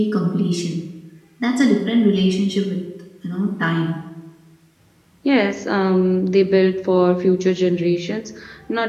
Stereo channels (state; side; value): identical; both; correlation 1.00